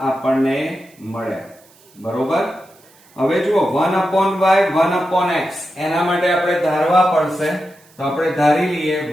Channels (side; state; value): right; noise; hiss, 29 dB below the sound